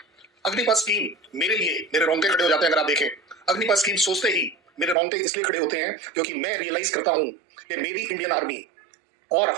अग्निपथ स्कीम मेरे लिए मेरे रोंगटे खड़े हो जाते हैं अगर आप देखें। अग्निपथ स्कीम सोचते ही मेरे रोंगटे इसलिए खड़े होते हैं क्योंकि मैं रियलाइज करता हूं कि मेरी इंडियन आर्मी और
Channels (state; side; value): drops out; left; at 5.0 s